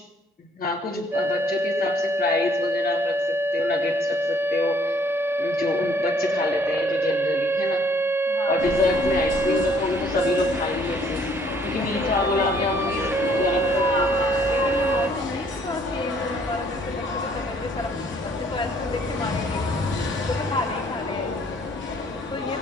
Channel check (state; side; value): normal; both; correlation 0.62